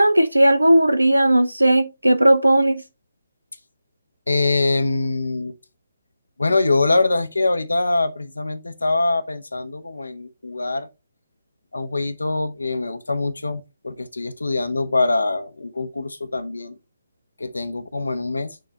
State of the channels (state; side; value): inverted; both; correlation -0.94